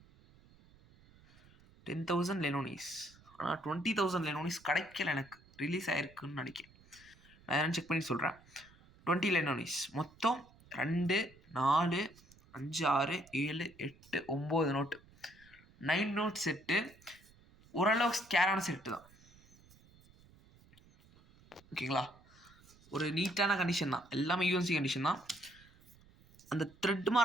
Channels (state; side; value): noise; right; rumble, 26 dB below the sound